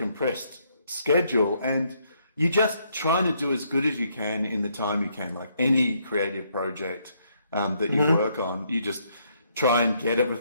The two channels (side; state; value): both; inverted; correlation -0.72